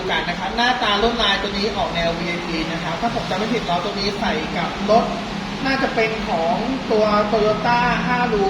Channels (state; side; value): identical; both; correlation 1.00